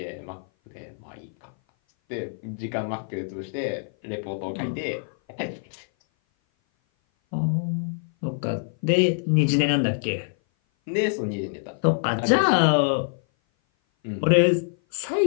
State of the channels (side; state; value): right; silent; 57 dB below the other